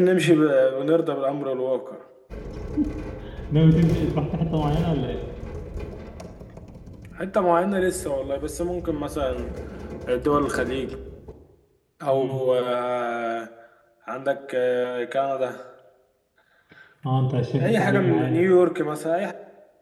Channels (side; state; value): both; identical; correlation 1.00